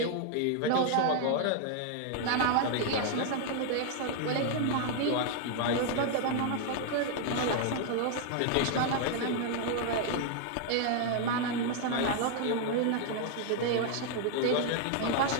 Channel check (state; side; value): different; both; correlation 0.00